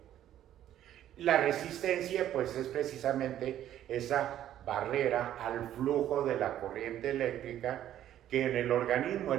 La resistencia pues es precisamente esa barrera al flujo de la corriente eléctrica, que en el organismo,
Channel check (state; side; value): quieter; left; 11.8 dB